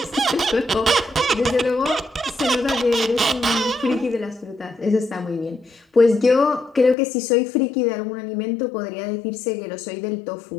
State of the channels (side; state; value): right; drops out; at 7.0 s